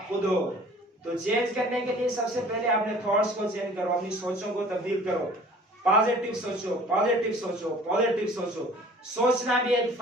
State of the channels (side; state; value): both; normal; correlation 0.49